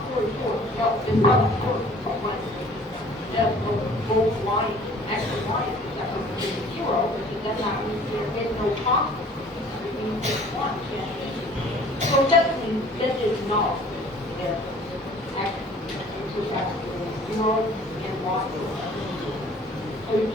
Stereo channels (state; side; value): normal; both; correlation 0.51